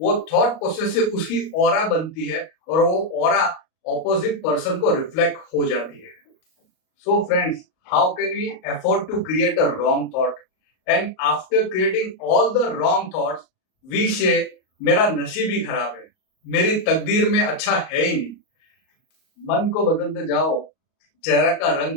वो थॉट प्रोसेस से उसकी ऑरा बनती है और वो ऑरा ऑपोजिट पर्सन को रिफ्लेक्ट हो जाती है। So friends, how can we afford to create a wrong thought, and after creating all the wrong thoughts we say मेरा नसीब ही खराब है, मेरी तकदीर में अच्छा है ही नहीं। मन को बदलते जाओ, चेहरा का रंग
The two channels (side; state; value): right; late; 38 ms